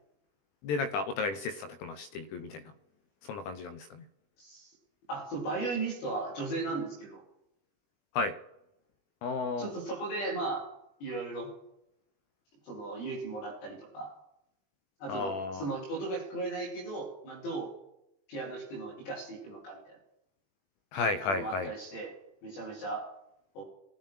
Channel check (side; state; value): right; late; 21 ms